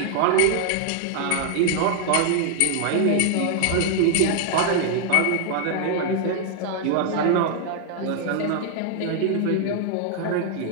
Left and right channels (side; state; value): both; different; correlation 0.00